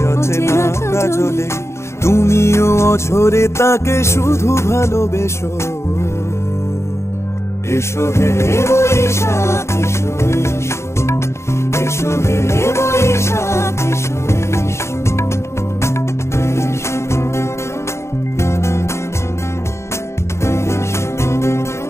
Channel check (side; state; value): right; late; 0.13 ms